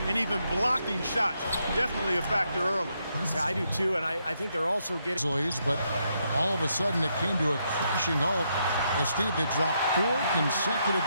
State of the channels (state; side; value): inverted; both; correlation -0.78